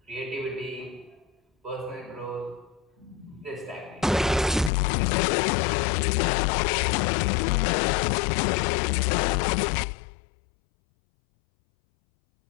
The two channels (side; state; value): right; drops out; at 4.7 s